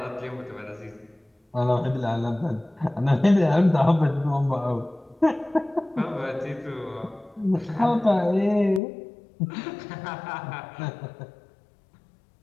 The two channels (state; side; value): drops out; right; at 8.8 s